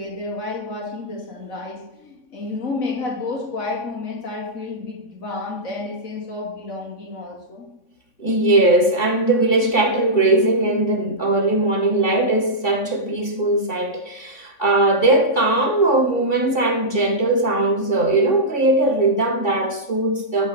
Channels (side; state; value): right; late; 3.6 ms